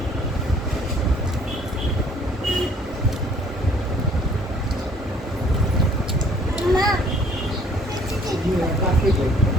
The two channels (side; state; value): both; normal; correlation 0.58